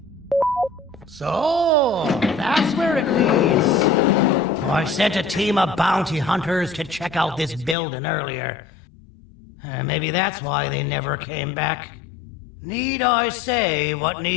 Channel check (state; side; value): drops out; right; at 7.8 s